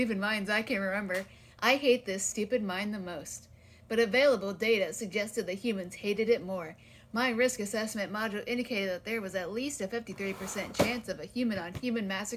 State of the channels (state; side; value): identical; both; correlation 1.00